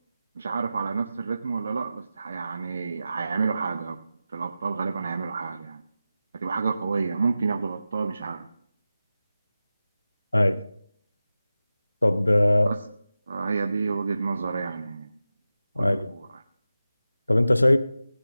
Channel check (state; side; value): inverted; both; correlation -0.94